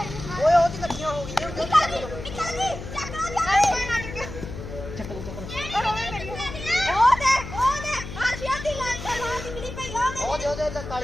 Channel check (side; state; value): left; noise; hum, 10 dB below the sound